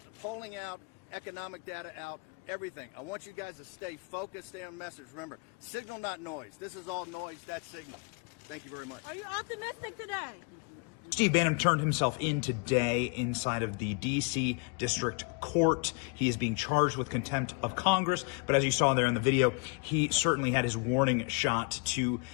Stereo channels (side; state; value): right; quieter; 33.8 dB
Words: polling out, economic data out, everything. I want you guys to stay focused, stay on message. Remember, signal, not noise. This is all noise, that's signal. Thank you very much. Are you optimistic today? Steve Bannon turned himself in today inside of the D.C. District Court. He is being charged with contempt of Congress, but as you saw there in the video, he certainly had his warning shot to